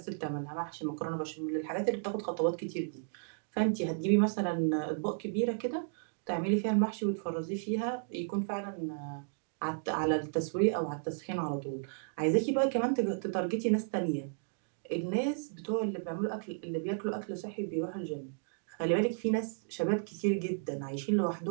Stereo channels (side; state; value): left; silent; digital silence